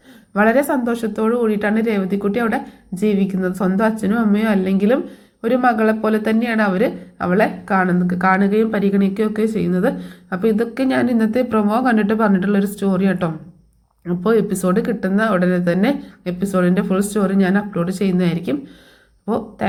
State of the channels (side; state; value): both; identical; correlation 1.00